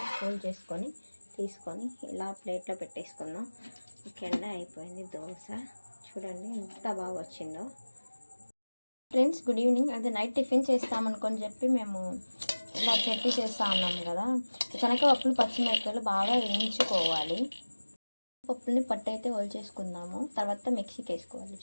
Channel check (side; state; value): both; inverted; correlation -1.00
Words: ఫోల్డ్ చేసుకొని తీసుకొని ఇలా ప్లేట్లో పెట్టేసుకుందాం. ఓకే అండి, అయిపోయింది దోశ. చూడండి ఎంత బాగా వచ్చిందో. Friends, good evening. అదే నైట్ టిఫిన్ చేస్తామనుకొని చెప్పి మేము ఇలా చట్నీ చేస్తూ ఉన్నాం కదా. శనగపప్పులు పచ్చిమిరపకాయలు బాగా వేయించుకోవాలి. పప్పుల్ని పట్టు అయితే చేసుకుందాము. తర్వాత మిక్సీకి వేసుకోవాలి,